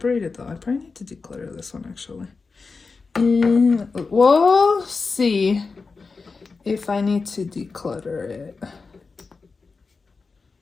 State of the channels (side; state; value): right; quieter; 4.4 dB